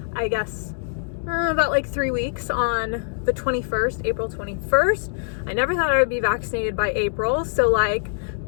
I guess, about 3 weeks on the 21st, April 21st. I never thought I would be vaccinated by April. So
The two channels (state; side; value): silent; right; digital silence